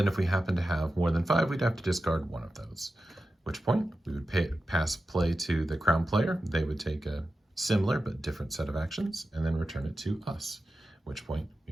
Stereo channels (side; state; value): both; normal; correlation 0.92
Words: if we happen to have more than 5, we'd have to discard 1 of those, at which point we would pass play to the crown player. They would take a similar but different set of actions and then return it to us, at which point